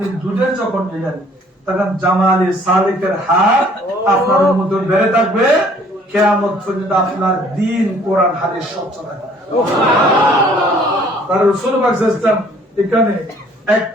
দুধের যখন নিলেন তখন জামালে সালেকের হার আপনার উম্মতের বেড়ে থাকবে, কিয়ামত পর্যন্ত আপনার দ্বীন কোরআন হাদিস স্বচ্ছ থাকবে। তার রাসূল পাক সাল্লাল্লাহু আলাইহি ওয়াসাল্লাম এখানে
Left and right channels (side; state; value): both; normal; correlation 0.58